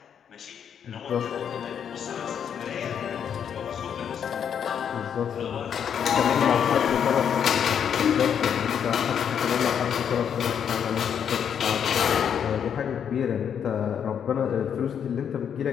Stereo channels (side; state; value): right; quieter; 8.2 dB